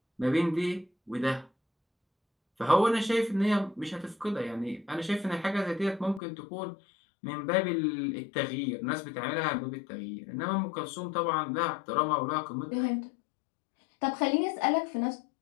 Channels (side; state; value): right; drops out; at 6.2 s